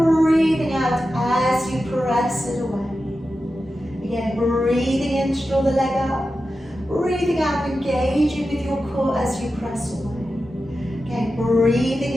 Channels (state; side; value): normal; both; correlation 0.92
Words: out as you press it away. Again, breathing in to draw the leg up, breathing out, engaging with your core as you press away. Again, breathing